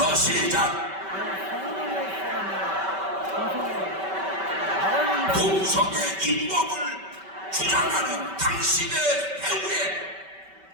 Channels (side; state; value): left; late; 5.2 ms